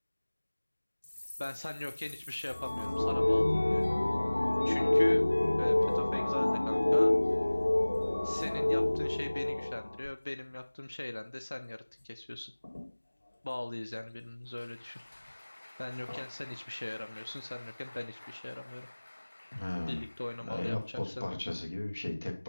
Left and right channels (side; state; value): both; inverted; correlation -1.00